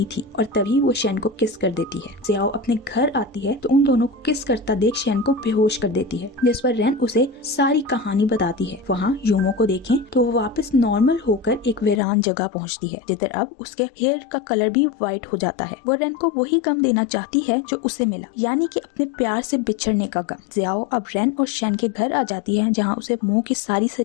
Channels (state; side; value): drops out; right; at 12.0 s